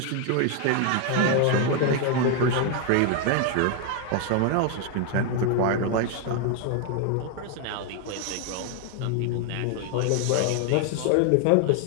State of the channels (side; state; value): both; different; correlation 0.01